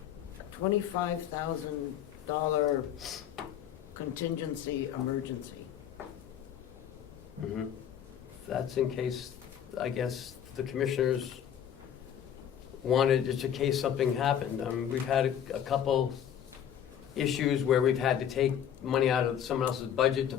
$25,000 contingency emergency. Mhm. That's in case, I guess, the commissioners wanted, just in case something happened. We've had a couple issues where we've had to take money out of someone else's budget to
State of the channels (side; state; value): right; quieter; 9.5 dB